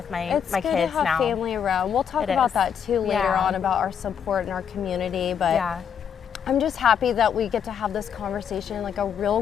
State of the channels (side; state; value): right; quieter; 7.8 dB